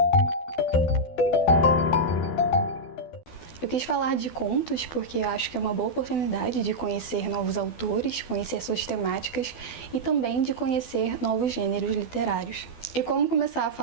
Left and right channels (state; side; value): late; right; 12 ms